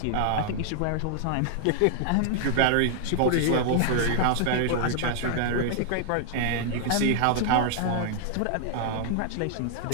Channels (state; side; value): different; both; correlation -0.01